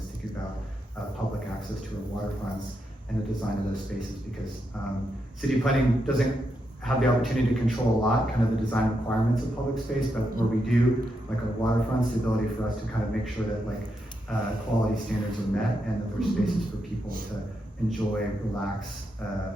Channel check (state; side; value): normal; both; correlation 0.83